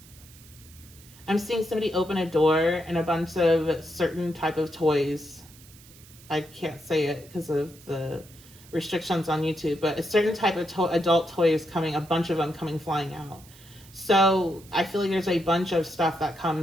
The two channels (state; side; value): noise; right; hiss, 22 dB below the sound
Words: seeing somebody open a door and a bunch of certain type of toys. I can't say it because of the restrictions on YouTube, but a certain type of adult toy is coming, a bunch of them coming flying out. So I feel like there's a bunch of stuff that